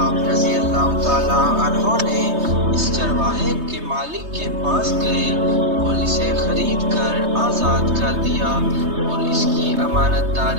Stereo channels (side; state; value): left; late; 3.2 ms